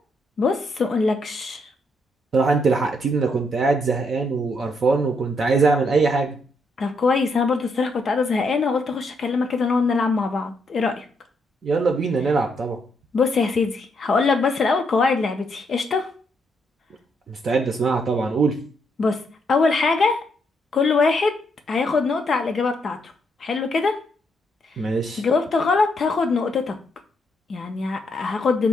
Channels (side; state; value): both; normal; correlation 0.76